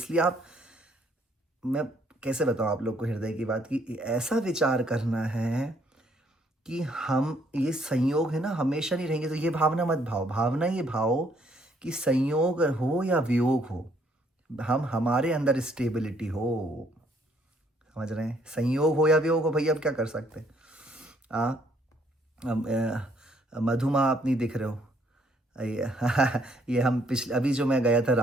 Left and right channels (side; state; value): both; normal; correlation 0.67